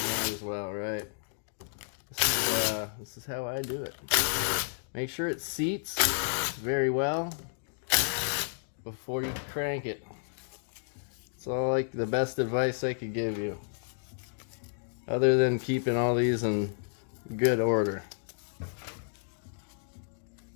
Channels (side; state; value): right; silent; digital silence